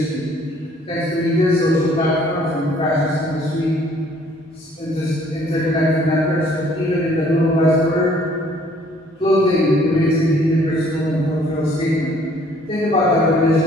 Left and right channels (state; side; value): normal; both; correlation 0.59